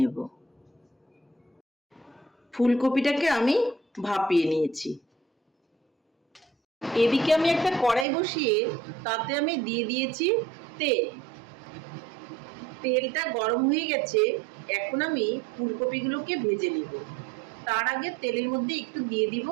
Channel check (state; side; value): drops out; left; at 8.1 s